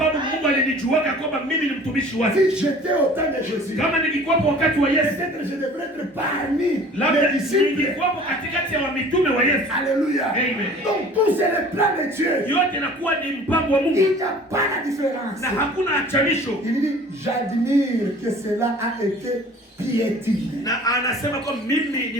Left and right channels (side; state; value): both; normal; correlation 0.47